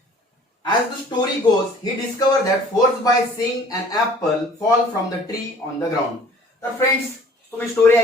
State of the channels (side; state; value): both; normal; correlation 0.51